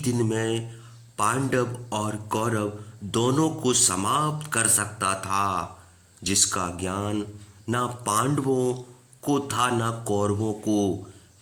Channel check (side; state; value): both; identical; correlation 1.00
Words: दिन में पांडव और कौरव दोनों को समाप्त कर सकता था, जिसका ज्ञान ना पांडवों को था ना कौरवों को।